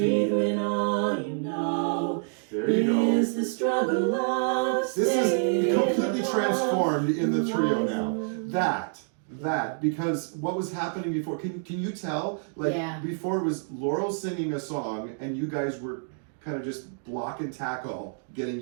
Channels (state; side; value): silent; left; digital silence